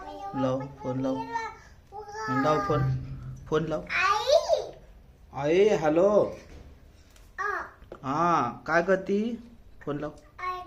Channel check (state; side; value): identical; both; correlation 1.00